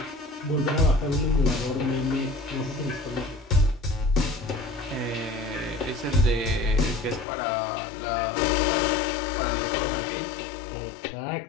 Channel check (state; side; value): drops out; right; at 7.2 s